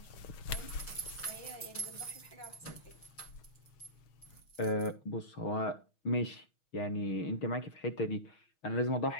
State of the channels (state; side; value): late; right; 6.3 ms